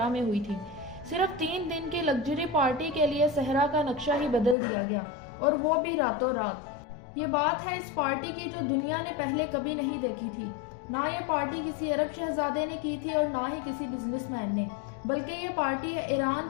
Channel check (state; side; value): drops out; right; at 4.5 s